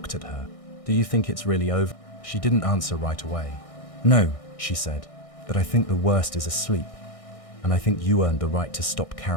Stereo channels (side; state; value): right; late; 1.6 ms